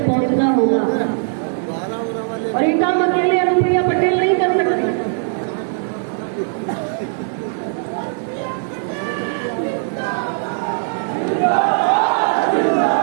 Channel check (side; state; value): left; silent; 56 dB below the other